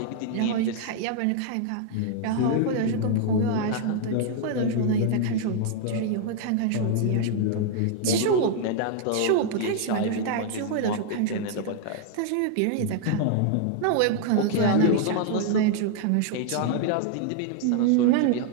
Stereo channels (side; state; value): both; different; correlation 0.00